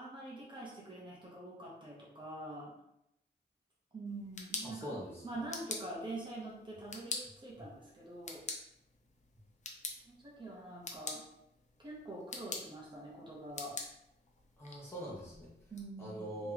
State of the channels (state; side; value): normal; both; correlation 0.35